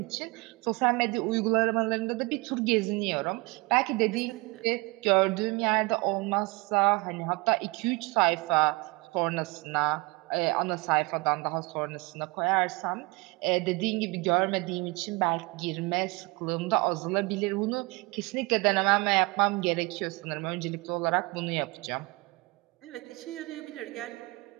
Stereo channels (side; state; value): left; quieter; 25.9 dB